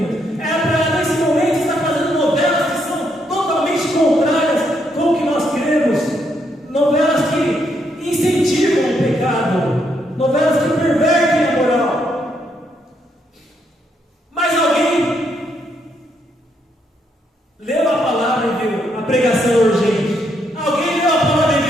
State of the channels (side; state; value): both; normal; correlation 0.76